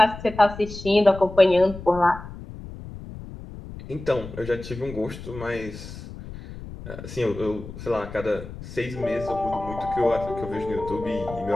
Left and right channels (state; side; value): noise; left; rumble, 12 dB below the sound